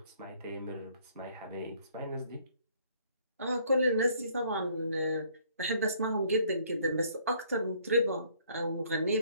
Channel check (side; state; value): both; inverted; correlation -0.62